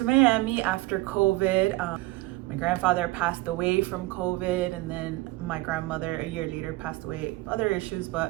Miami after COVID. My grandfather passed away from COVID, and then my grandmother a year later passed away. Other issues,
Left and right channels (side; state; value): left; quieter; 19.8 dB